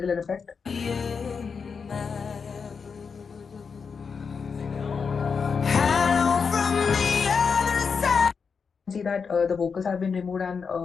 effect, see that the vocals have been removed and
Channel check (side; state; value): right; quieter; 5.7 dB